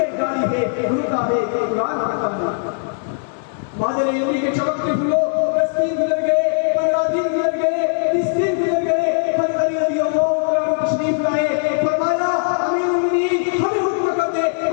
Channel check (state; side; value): silent; right; 60 dB below the other